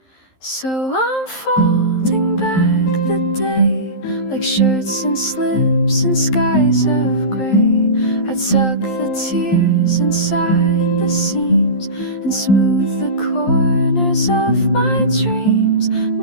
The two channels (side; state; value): right; late; 11 ms